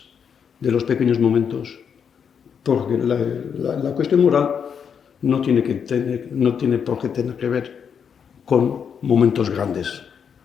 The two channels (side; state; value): right; quieter; 7.2 dB